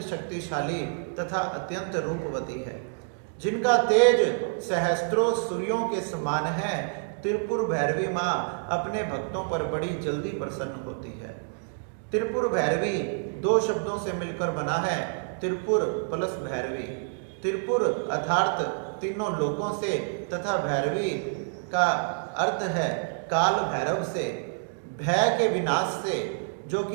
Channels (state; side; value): silent; left; digital silence